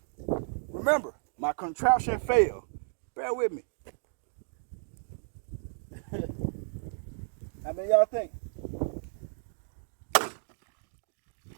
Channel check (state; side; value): silent; left; 56 dB below the other